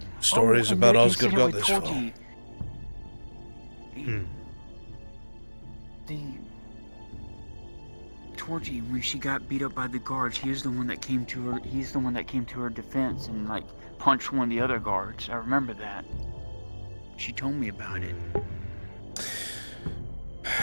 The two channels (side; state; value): both; inverted; correlation -1.00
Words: stories and about the Osgood incident got with this far. Torgy. The Torgy, when she got beat up by the guards, he was the one that came to her. He's the one that came to her defense and like punched one of the other guards. I remember that. She told me about it.